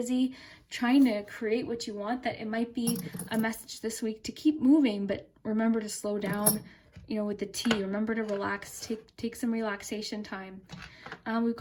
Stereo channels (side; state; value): both; identical; correlation 1.00